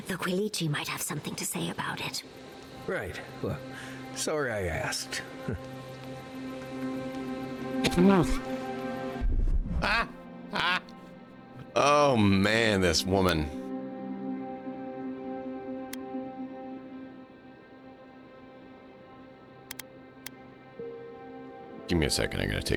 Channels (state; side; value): identical; both; correlation 1.00